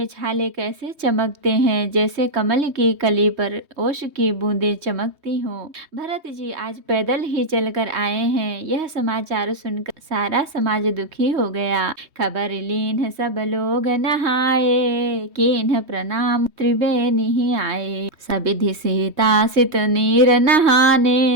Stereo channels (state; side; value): late; left; 3.2 ms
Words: छाले कैसे चमकते हैं, जैसे कमल की कली पर ओश की बूंदें चमकती हों। भरत जी आज पैदल ही चलकर आए हैं। यह समाचार सुनकर सारा समाज दुखी हो गया। खबर लीन सब लोग नहाए, कीन्ह प्रणाम त्रिवेणी ही आए, सबिधि सीता सित नीर